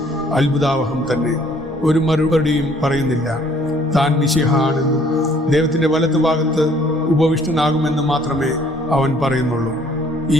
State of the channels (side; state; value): both; normal; correlation 0.60